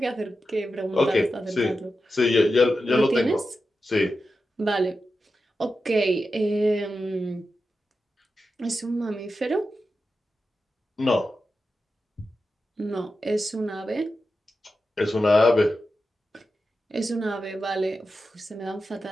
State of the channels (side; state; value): both; normal; correlation 0.90